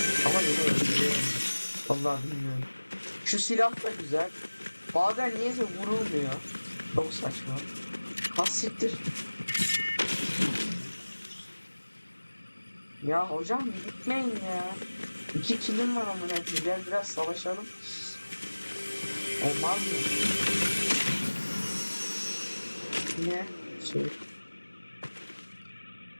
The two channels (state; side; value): inverted; both; correlation -1.00